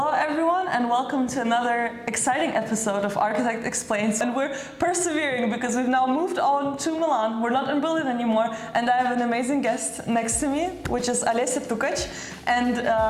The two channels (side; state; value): both; identical; correlation 1.00